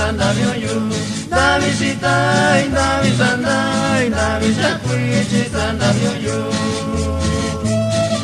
vyoyu Davi sitai davi sandai davi sakwiti sanda vyoyu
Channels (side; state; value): both; identical; correlation 1.00